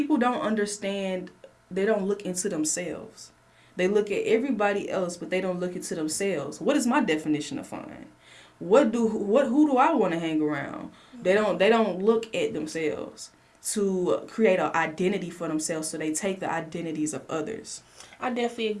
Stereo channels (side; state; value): both; identical; correlation 1.00